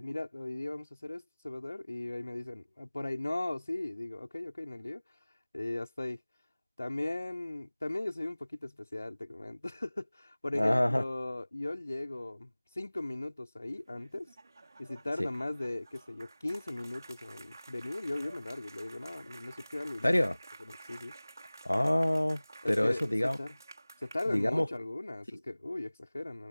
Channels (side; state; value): both; inverted; correlation -0.99